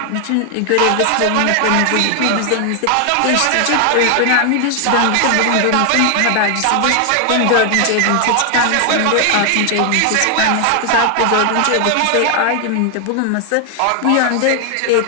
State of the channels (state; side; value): different; both; correlation 0.00